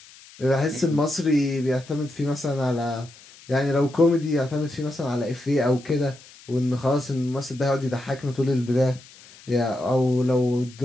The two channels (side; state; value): left; noise; hiss, 22 dB below the sound